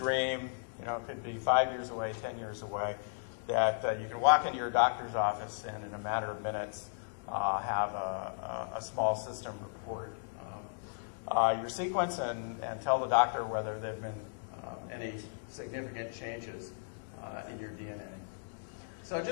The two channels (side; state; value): right; silent; digital silence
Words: it could be 5 years away, 10 years away, that you can walk into your doctor's office and in a matter of minutes have a small system report your sequence and tell the doctor whether there have been any significant changes in your DNA. So